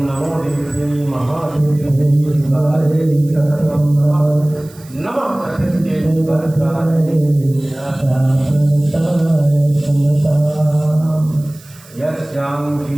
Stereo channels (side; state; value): right; noise; hiss, 24 dB below the sound